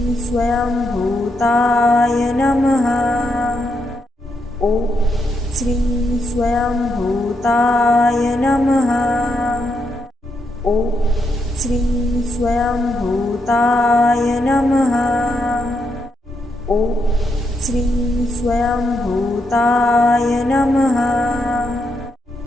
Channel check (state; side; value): normal; both; correlation 0.81